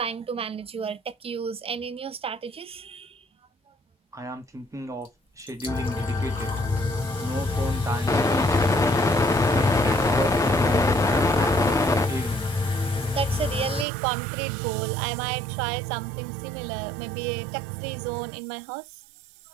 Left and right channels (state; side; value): drops out; left; at 13.9 s